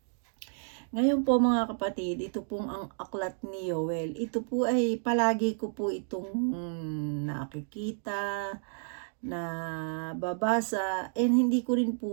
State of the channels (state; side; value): silent; left; digital silence